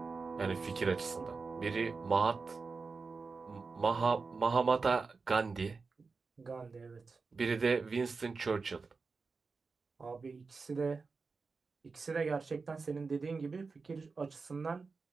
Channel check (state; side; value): quieter; left; 4.5 dB